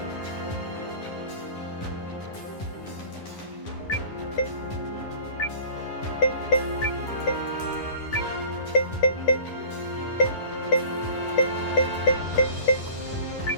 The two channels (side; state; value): right; late; 10 ms